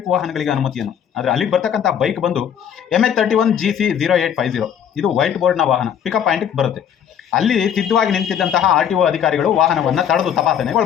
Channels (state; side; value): quieter; right; 8.9 dB